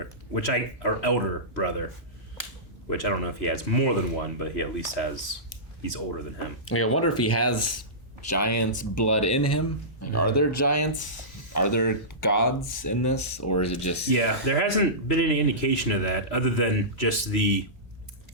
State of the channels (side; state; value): both; normal; correlation -0.19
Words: or elder brother, which I don't know if he has more than one, but he at least he's older than him. Like, I wonder if he has giants' blood in him. Like, are there giants? Are there gods in this, or is it just? Yeah, there hasn't been any indication of that other than just the